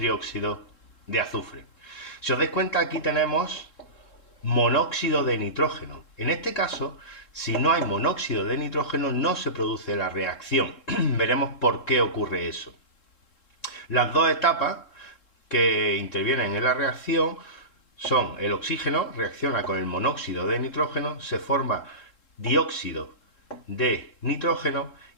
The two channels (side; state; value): right; late; 3.7 ms